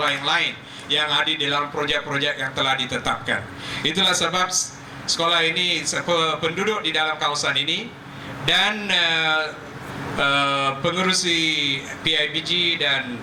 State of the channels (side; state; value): both; identical; correlation 1.00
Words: yang lain yang ada di dalam projek-projek yang telah ditetapkan. Itulah sebab sekolah ini, penduduk di dalam kawasan ini dan pengerusi PIBG dan